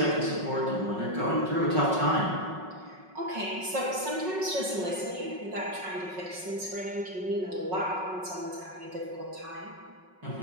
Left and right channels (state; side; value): late; left; 5.4 ms